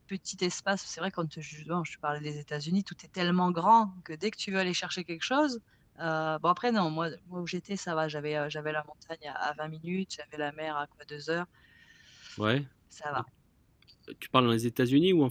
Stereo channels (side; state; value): both; identical; correlation 1.00